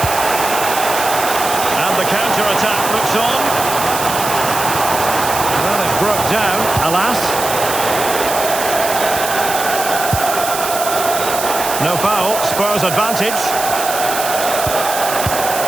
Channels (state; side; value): noise; right; hiss, 5 dB below the sound